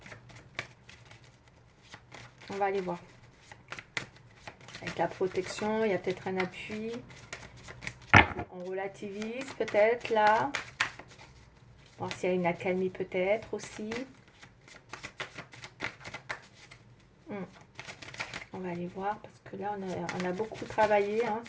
on va aller voir. Avec la protection, il y a peut-être un appui. On relativise peut-être là. Voir s'il y a une accalmie peut-être aussi. On va aller voir parce que là, on a beaucoup travaillé hein,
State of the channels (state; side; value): identical; both; correlation 1.00